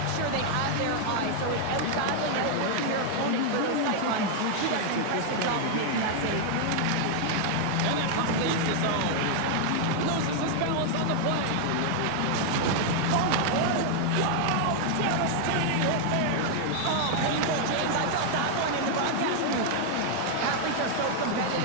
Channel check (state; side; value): different; both; correlation 0.00